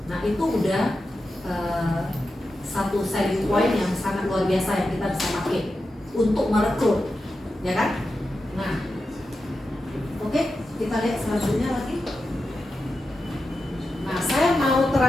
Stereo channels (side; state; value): both; normal; correlation 0.90